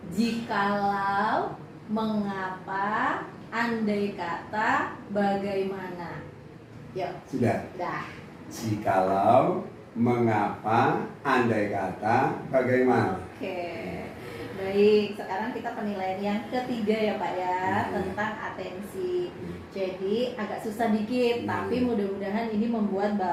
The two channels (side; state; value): both; identical; correlation 1.00